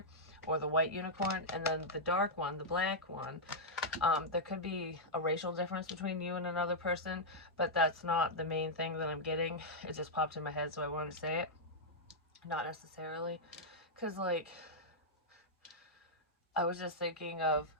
or the white unicorn. And then the dark one, the black one, there could be a racial difference between you and another person, but that's not the main thing that I'm getting. It just popped in my head, so I wanted to say it. Not necessarily, because like, I was just thinking of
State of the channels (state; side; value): normal; both; correlation -0.07